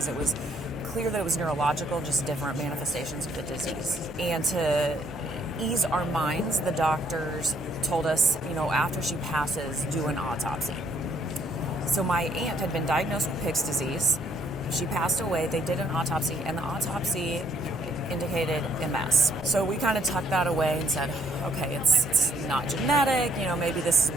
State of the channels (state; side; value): normal; both; correlation 0.66